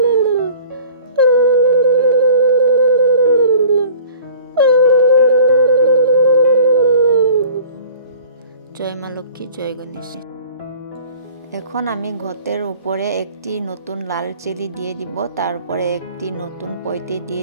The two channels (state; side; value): inverted; both; correlation -0.47